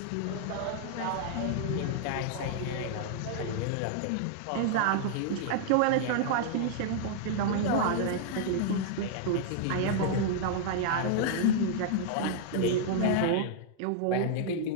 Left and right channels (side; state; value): both; different; correlation -0.01